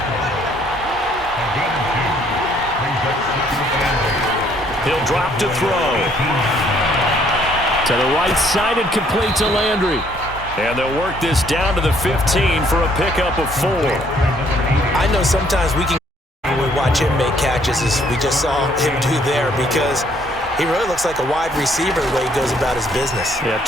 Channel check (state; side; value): normal; both; correlation 0.65